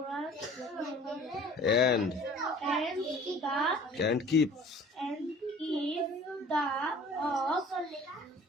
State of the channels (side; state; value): both; normal; correlation 0.48